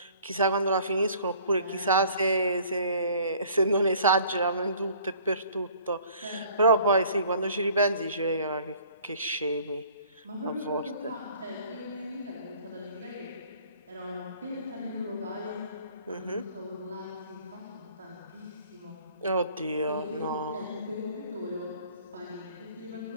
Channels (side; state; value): both; inverted; correlation -0.54